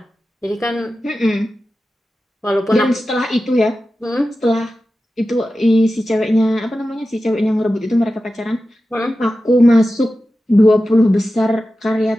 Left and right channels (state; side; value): normal; both; correlation 0.93